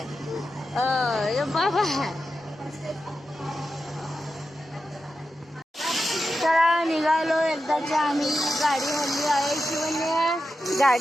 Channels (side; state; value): both; normal; correlation 0.90